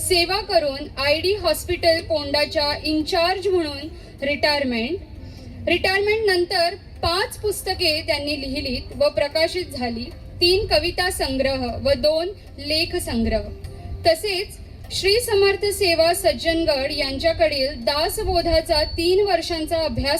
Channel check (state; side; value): identical; both; correlation 1.00